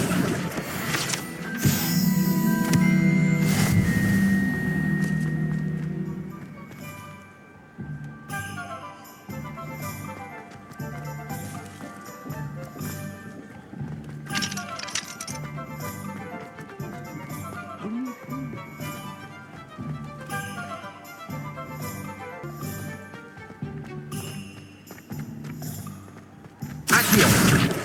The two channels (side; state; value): both; identical; correlation 1.00